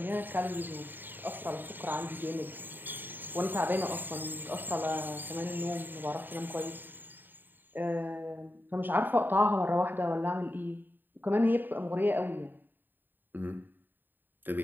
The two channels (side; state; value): left; late; 0.092 ms